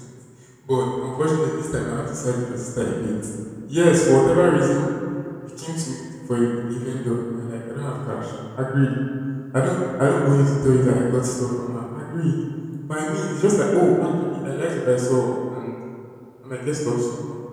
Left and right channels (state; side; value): identical; both; correlation 1.00